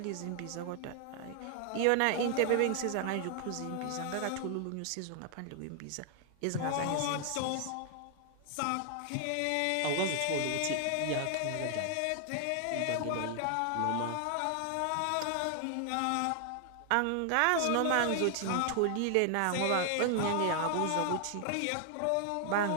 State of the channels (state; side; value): different; both; correlation 0.00